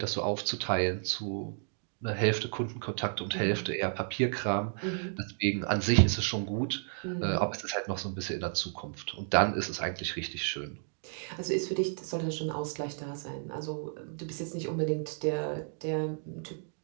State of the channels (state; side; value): silent; left; 56 dB below the other